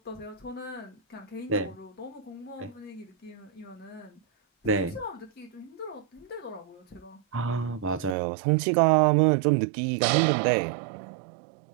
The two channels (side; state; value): left; drops out; at 8.2 s